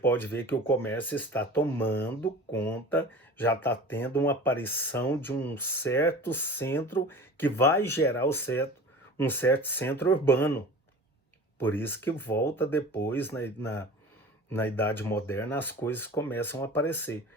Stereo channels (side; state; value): both; normal; correlation 0.39